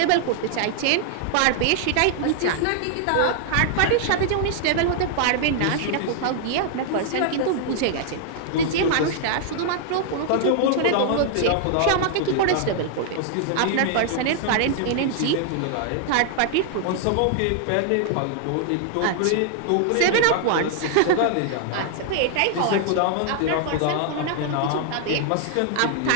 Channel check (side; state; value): both; different; correlation 0.00